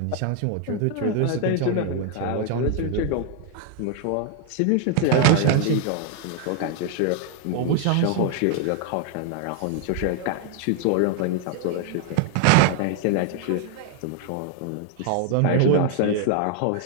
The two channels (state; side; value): different; both; correlation 0.00